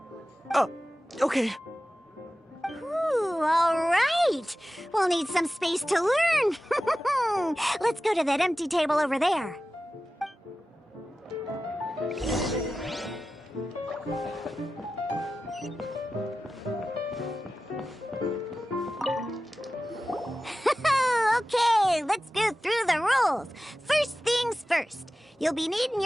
Okay. Ooh, all right. We'll need some space to learn. Let's go to that empty table over there. Okay, let's go through the rules. First things first. You'll be needing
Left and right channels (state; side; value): normal; both; correlation 0.95